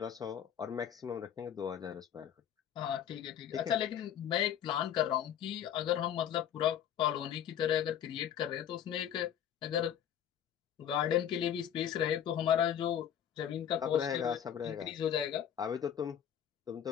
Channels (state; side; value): quieter; right; 9.6 dB